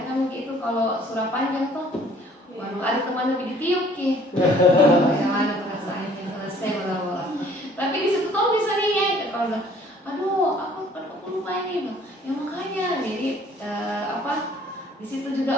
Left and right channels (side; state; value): both; normal; correlation 0.56